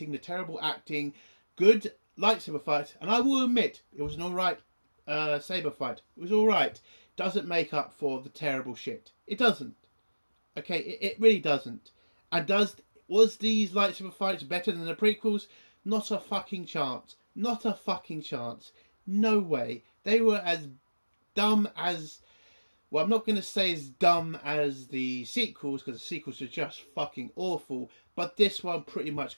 the terrible acting, good lightsaber fight, and I will admit it was an alright saber fight. It was alright. Doesn't make up for the terrible shit. It doesn't. Okay, it really doesn't. And was these lightsaber fights better than the prequels? Not a fucking chance. Not a fucking chance. No way. They were as dumb as well, I'm not going to say as dumb as the sequels, because the sequels are just fucking awful, but this one pretty much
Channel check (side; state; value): both; inverted; correlation -1.00